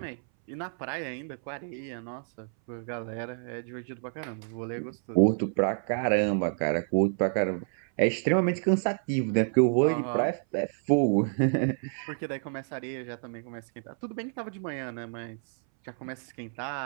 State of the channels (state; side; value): silent; left; 58 dB below the other